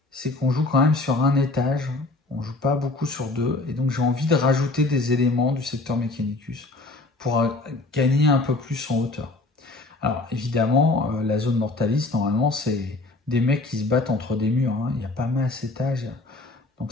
c'est qu'on joue quand même sur un étage. On joue pas beaucoup sur 2. Et donc, j'ai envie de rajouter des éléments du secteur Mechanicus pour gagner un peu plus en hauteur. Alors, évidemment, la zone Mortalis, normalement, c'est des mecs qui se battent entre des murs. Hein. Il n'y a pas masse étage. Donc,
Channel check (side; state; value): right; quieter; 3.1 dB